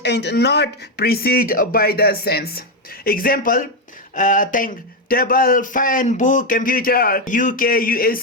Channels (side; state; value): both; normal; correlation 0.06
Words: and not preceded by the sense. Example, thing. Table, fan, book, computer, UK,